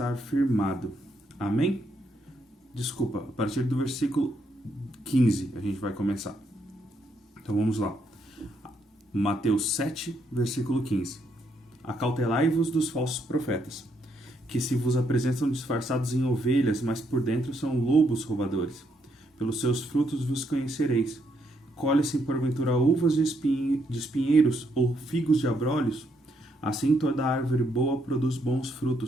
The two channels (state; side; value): normal; both; correlation 0.75